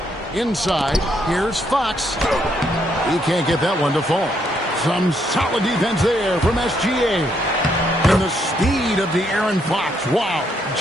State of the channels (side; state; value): both; normal; correlation 0.74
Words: Inside, here's Fox. He can't get that one to fall. Some solid defense there from SGA. And the speed of De'Aaron Fox. Wow.